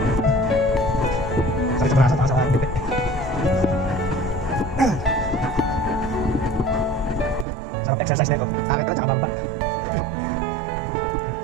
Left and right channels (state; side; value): drops out; left; at 7.5 s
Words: Sakit sa braso, taas sa dupe. Sarap exercise na ito. Akit ka, tsaka bamba.